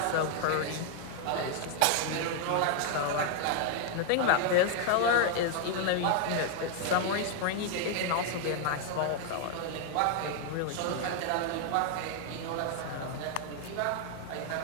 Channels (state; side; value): different; both; correlation 0.00